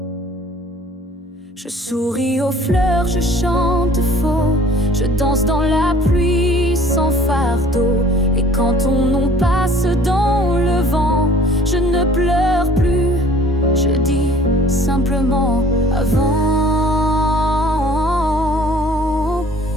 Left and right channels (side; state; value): both; normal; correlation 0.52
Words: Je souris aux fleurs, je chante faux, je danse dans la pluie sans fardeau. Et quand on passe dans le vent, je ne pleure plus, je dis simplement avant.